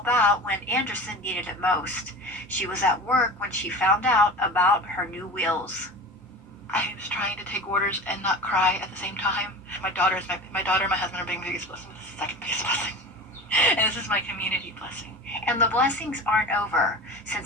out when Anderson needed it most. She was at work when she found out about her new wheels. I was trying to take orders and not cry at the same time. My daughter and my husband are being the biggest blessing. This is the second biggest blessing. And this is my community blessing. And the blessings aren't over.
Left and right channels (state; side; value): normal; both; correlation 0.33